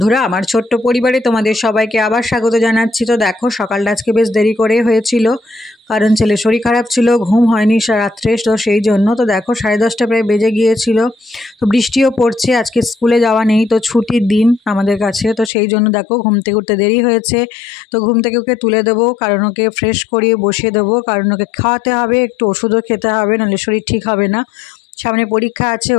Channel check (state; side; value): drops out; right; at 15.5 s